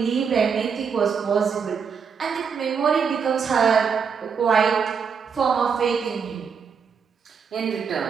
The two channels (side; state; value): left; quieter; 6.3 dB